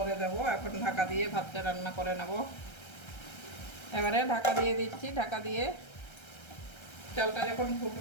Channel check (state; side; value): late; right; 1.3 ms